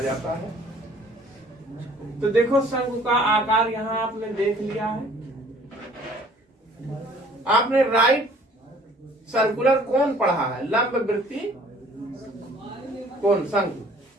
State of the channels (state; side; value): normal; both; correlation 0.54